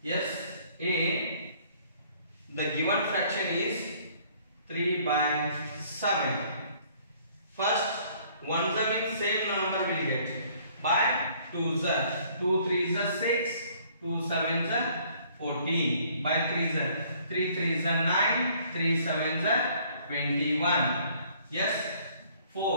Yes, A. The given fraction is 3 by 7. First, 1 means same number will get. By 2 3s 6, 2 7s 14. By 3 3s 9, 3 7s 21. Yes,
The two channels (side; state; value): both; inverted; correlation -0.60